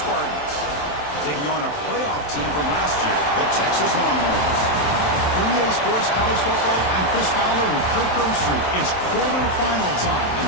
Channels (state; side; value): late; right; 27 ms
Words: taking on a playoff team from last year, the Texas Longhorns. 3A Sports College Football, I'm Chris Fowler with Kirk Herbstreit. It's quarterfinal time